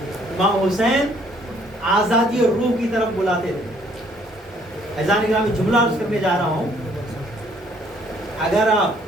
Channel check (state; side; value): normal; both; correlation 0.63